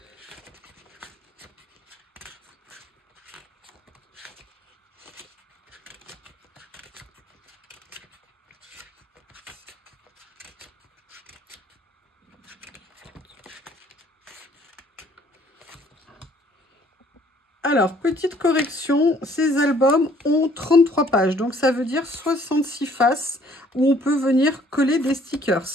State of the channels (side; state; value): both; normal; correlation 0.60